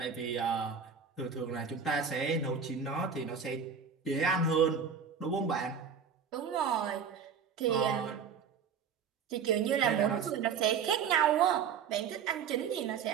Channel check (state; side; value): quieter; left; 6.6 dB